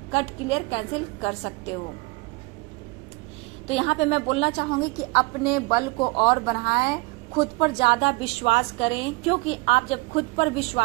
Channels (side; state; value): left; quieter; 26.0 dB